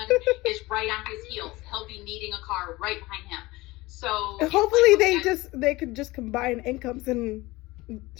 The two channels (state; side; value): quieter; right; 20.6 dB